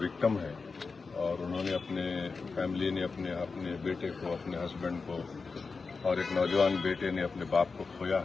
ہے اور انہوں نے اپنے فیملی نے اپنے بیٹے کو، اپنے ہسبینڈ کو اور ایک نوجوان بیٹے نے اپنے باپ کو کھویا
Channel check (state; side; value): quieter; right; 4.5 dB